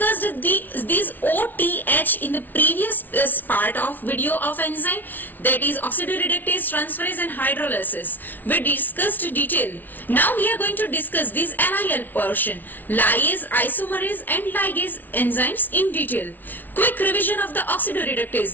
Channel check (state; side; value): late; right; 0.085 ms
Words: these OTH in the previous part of video of enzyme, that is oxidoreductase, transferase and hydrolysis. We discussed detail. Now we are going to discuss this LIL portion, lyase, isomerase and ligase enzymes in detail. Quick revision of the oxidoreductase,